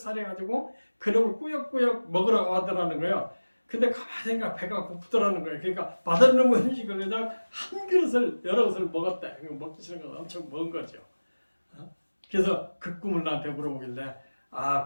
그놈을 꾸역꾸역 먹으라고 하더라는 거예요. 근데 가만히 생각 배가 고프더라는 거예요. 그러니까 맛없는 음식을 그냥 한 그릇을 여러 그릇을 먹었대. 먹기 싫은 건 엄청 먹은 거죠. 그래서 그 꿈을 나한테 물어보길래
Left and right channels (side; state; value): both; inverted; correlation -1.00